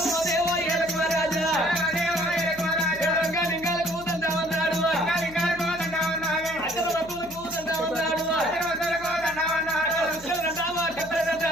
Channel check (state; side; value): noise; left; hum, 19 dB below the sound